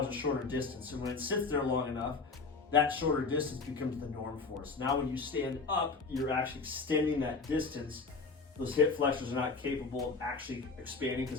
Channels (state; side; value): quieter; right; 4.3 dB